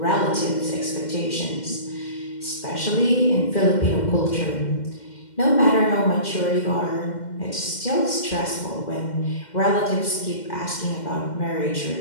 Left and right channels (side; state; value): right; late; 2.1 ms